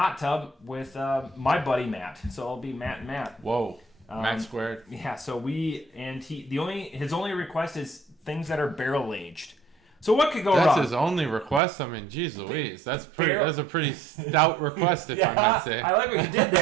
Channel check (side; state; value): left; drops out; at 11.6 s